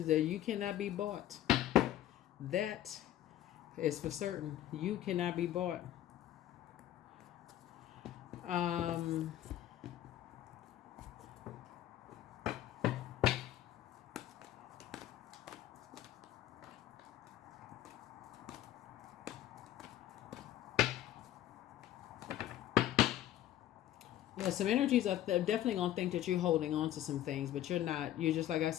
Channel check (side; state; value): right; quieter; 12.8 dB